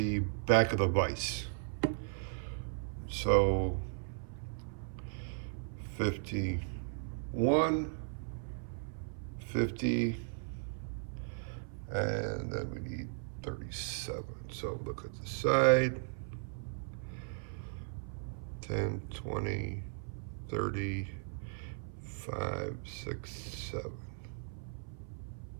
back of the vise. So 51, 50, and then we need 37. So look at the side. 10, 20, 30, 5, 6, 7.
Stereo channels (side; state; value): left; silent; 53 dB below the other